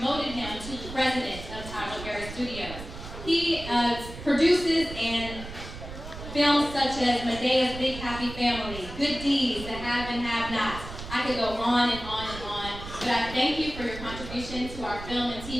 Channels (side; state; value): right; noise; rumble, 11 dB below the sound